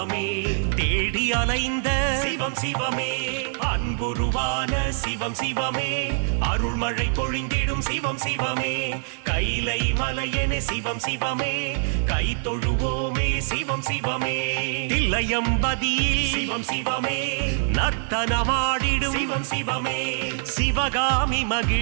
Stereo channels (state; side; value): silent; left; 62 dB below the other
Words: தேடி அலைந்த சிவம் சிவமே அன்புருவான சிவம் சிவமே அருள்மழை பொழிந்திடும் சிவம் சிவமே கைலை மலையனே சிவம் சிவமே கை தொழுவோமே சிவம் சிவமே தில்லையம்பதியில் சிவம் சிவமே நர்த்தனமாடிடும் சிவம் சிவமே சிவகாமி